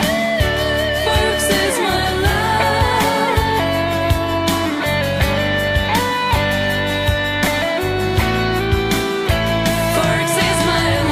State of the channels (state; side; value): identical; both; correlation 1.00